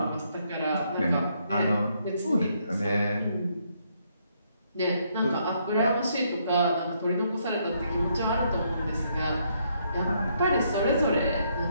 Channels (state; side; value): inverted; both; correlation -0.73